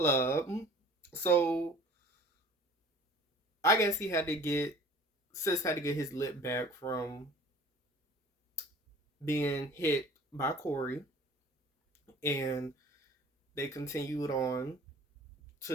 So I guess Sis had to get his lip back from being hit by Corey, and they continued on to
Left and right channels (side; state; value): both; normal; correlation 0.47